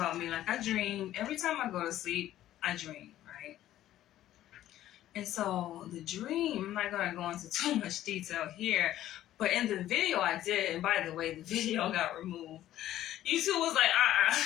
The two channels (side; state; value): right; quieter; 13.2 dB